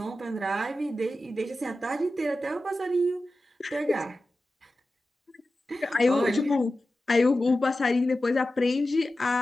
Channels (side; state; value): both; normal; correlation 0.94